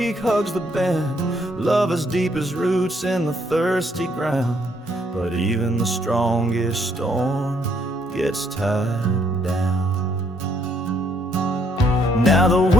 hugs the bend, love as deep as roots in the thirsty ground. But even the strongest storm gets tied down. Now the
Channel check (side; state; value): both; normal; correlation 0.70